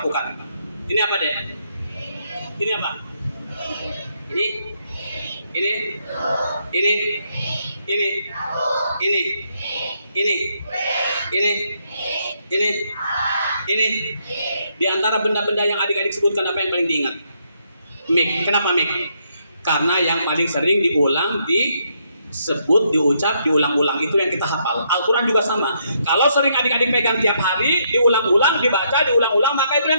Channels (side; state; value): both; inverted; correlation -0.75